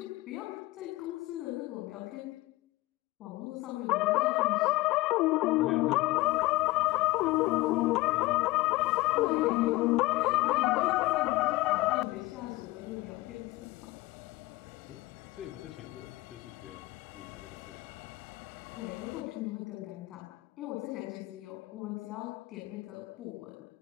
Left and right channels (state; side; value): quieter; right; 19.7 dB